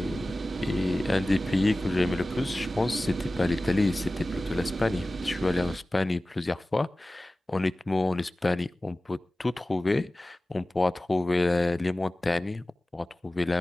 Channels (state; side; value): normal; both; correlation 0.97